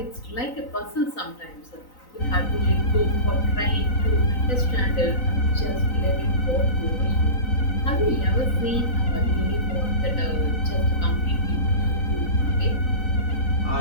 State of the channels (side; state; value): right; late; 3.9 ms